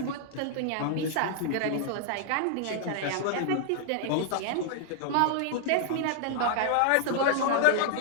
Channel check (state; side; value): different; both; correlation -0.01